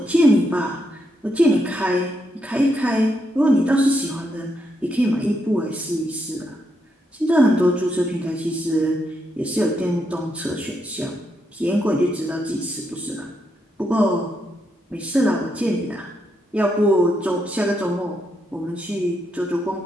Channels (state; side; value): normal; both; correlation 0.80